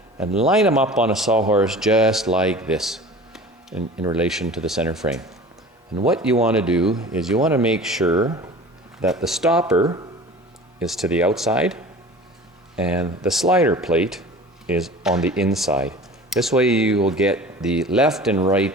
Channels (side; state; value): both; normal; correlation 0.40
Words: and line them up on a sawhorse just like this in relation to the center frame. And what you want to do is you want to make sure that the stopper is to the outside and the slider plate is on the inside. This way you will get the left and